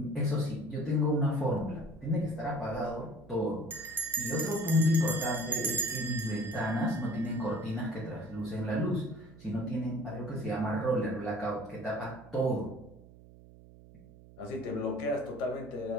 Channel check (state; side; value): noise; right; hum, 21 dB below the sound